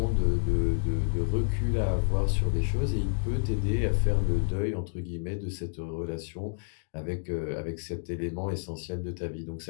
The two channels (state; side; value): silent; right; digital silence